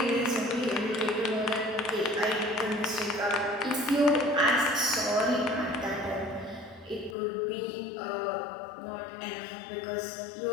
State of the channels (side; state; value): right; drops out; at 7.2 s